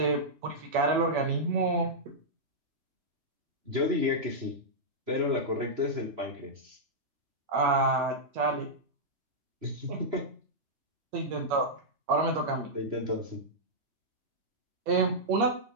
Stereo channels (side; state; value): left; late; 3.0 ms